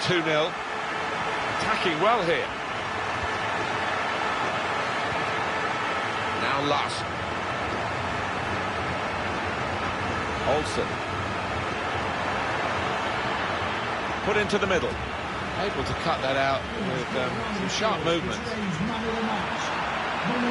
2-0. Attacking well here. Now Last. Olsen. Put into the middle. Able to cut that out with some sharp movement.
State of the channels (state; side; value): identical; both; correlation 1.00